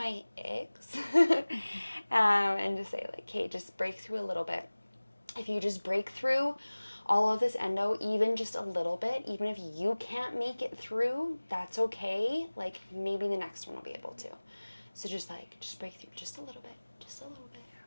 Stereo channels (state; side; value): inverted; both; correlation -1.00